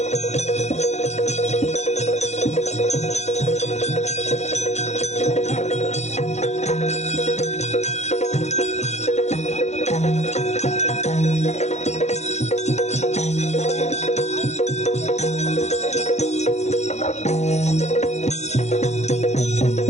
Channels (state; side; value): late; right; 0.33 ms